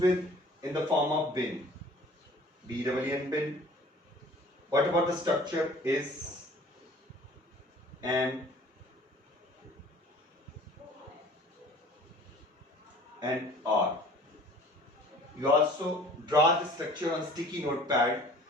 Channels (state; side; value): normal; both; correlation 0.49